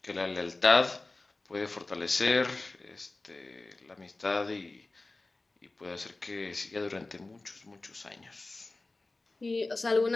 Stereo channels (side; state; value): right; quieter; 3.2 dB